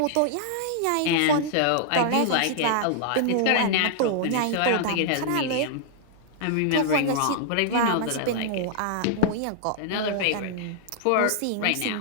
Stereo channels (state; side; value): different; both; correlation -0.01